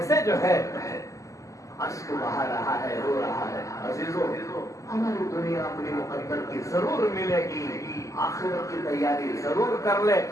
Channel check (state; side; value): late; right; 0.16 ms